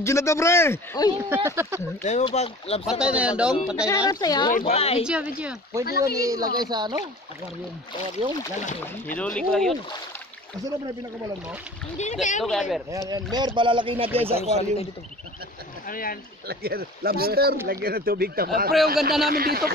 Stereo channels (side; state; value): both; normal; correlation 0.42